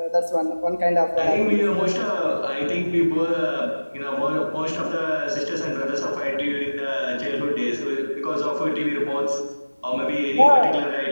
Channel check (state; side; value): inverted; both; correlation -1.00